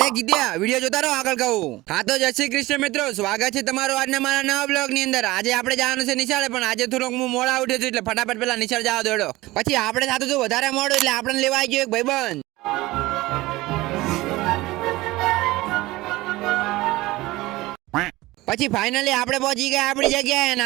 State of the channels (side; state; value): left; quieter; 19.2 dB